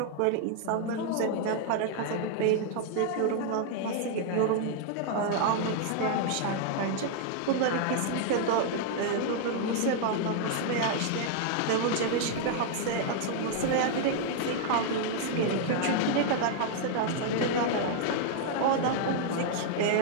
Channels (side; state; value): both; different; correlation 0.00